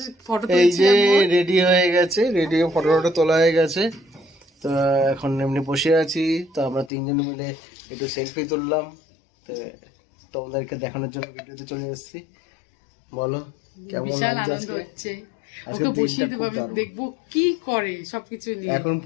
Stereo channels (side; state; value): right; drops out; at 6.9 s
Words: ফটো এই যে রেডি হয়ে গেছে, রেডি হয়ে ফটো ফটো তোলা হয়ে গেছে। তো এখন এমনি বসে আছি, তো আমরা তিনজন মিলে একটু সেলফি তুললাম, তো তোমাদেরকে দেখানোর জন্য ভিডিওতে চলে এসেছি। বলো কেমন বিশাল লাগছে আনন্দ আজকে? হচ্ছে। আজকে ওকে বসিয়ে দিনটা দেবো, খুব আমি দারুণ। দেখবো কি করে সবকিছু নিয়ে। এখন